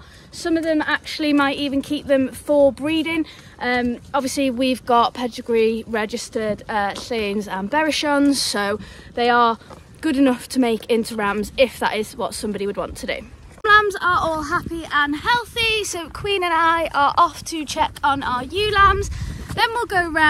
Some of them actually might even keep them for breeding. Obviously we've got pedigree registered Cwyns and Berrichons, so they are good enough to make into rams if that is what somebody would want to do. Lambs are all happy and healthy, so Cwin and I are off to check on our ewe lambs. Then we'll go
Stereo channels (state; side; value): identical; both; correlation 1.00